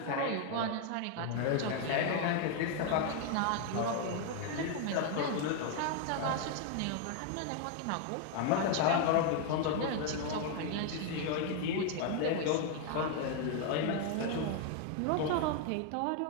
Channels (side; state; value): both; different; correlation 0.01